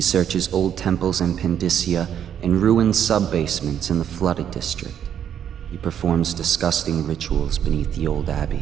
searches old temples in Pandysia and ruined sub-basements in the flooded district. He performs disgusting rituals beneath the old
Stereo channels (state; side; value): quieter; left; 9.3 dB